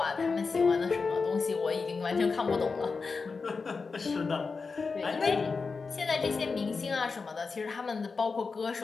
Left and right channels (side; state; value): right; quieter; 4.6 dB